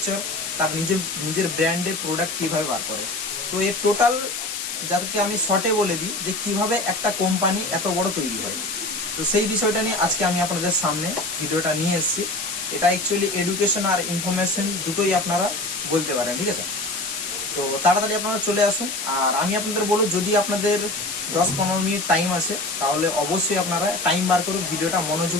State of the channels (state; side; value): noise; left; hiss, 5 dB below the sound